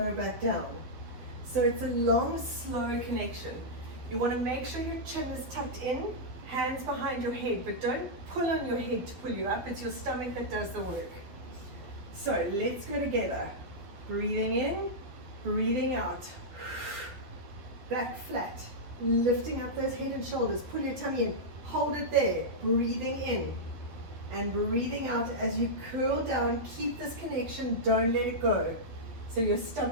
back down. So it's a long, slow connection. You want to make sure your chin is tucked in, hands behind your head, but don't pull on your head to pull you up. It's your stomach that does the work. So let's go together. Breathing in, breathing out. Back flat, lifting up those head and shoulders. Pull your tummy in, hold it there. Breathing in and breathing out as you curl down. Keep this connection, don't let it go. So your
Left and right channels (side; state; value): left; late; 12 ms